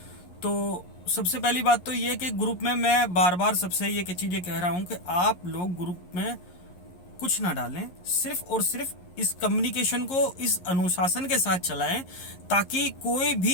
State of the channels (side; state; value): right; late; 11 ms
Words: तो सबसे पहली बात तो ये कि ग्रुप में मैं बार बार सबसे ये चीज़ें कह रहा हूँ कि आप लोग ग्रुप में कुछ ना डालें, सिर्फ और सिर्फ इस कम्युनिकेशन को इस अनुशासन के साथ चलाएं, ताकि कोई